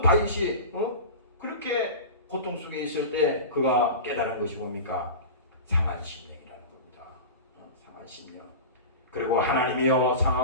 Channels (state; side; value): inverted; both; correlation -0.30